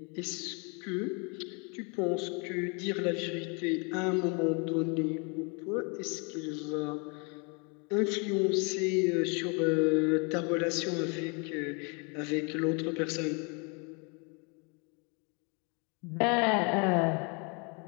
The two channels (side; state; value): right; quieter; 33.6 dB